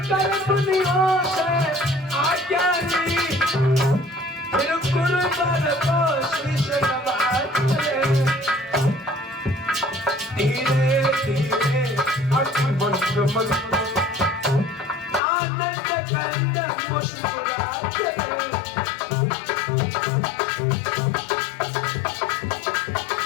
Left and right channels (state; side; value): drops out; right; at 15.2 s